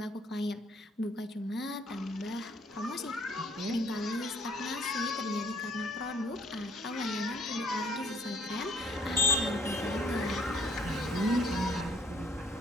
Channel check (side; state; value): both; normal; correlation 0.61